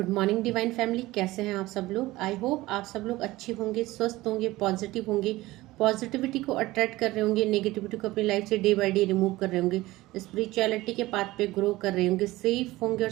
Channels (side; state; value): left; quieter; 18.5 dB